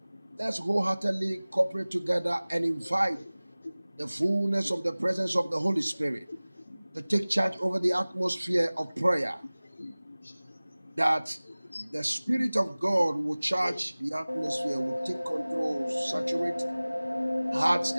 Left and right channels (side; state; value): both; inverted; correlation -0.99